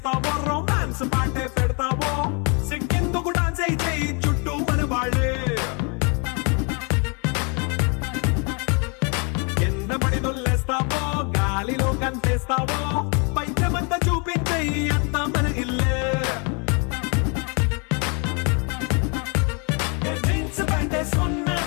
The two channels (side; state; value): right; quieter; 34.7 dB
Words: రొమాన్స్ పాటే పెడతావో సిగ్గెందుకు డాన్స్ అయితే చుట్టూ మన వాళ్ళే కింద పడి దొల్లేస్తావో గాలిలో కంటేస్తావో పైచమంతా చూపించే అంతా మన ఇల్లే జీన్స్ ప్యాంటేసుకున్నా